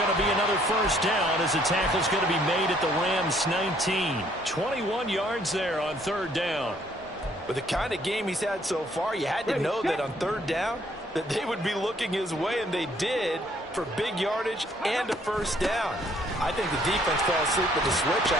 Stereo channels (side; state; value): both; normal; correlation 0.64